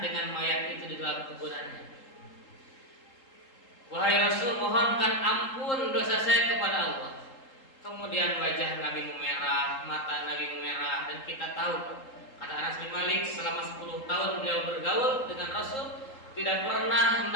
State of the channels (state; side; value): late; right; 3.8 ms